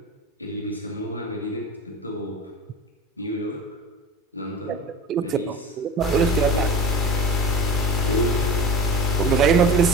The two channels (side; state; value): both; normal; correlation 0.33